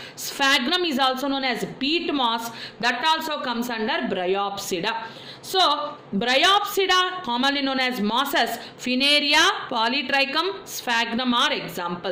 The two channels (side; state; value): both; identical; correlation 1.00